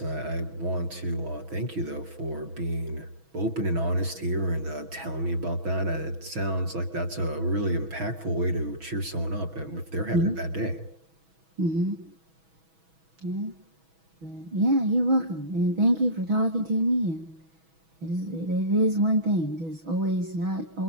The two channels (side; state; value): left; late; 6.2 ms